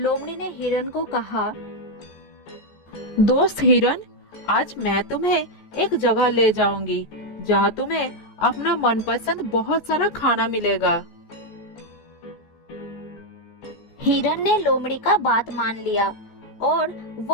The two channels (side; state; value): right; late; 14 ms